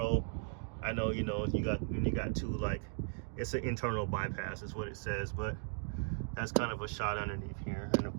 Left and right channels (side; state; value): left; silent; 53 dB below the other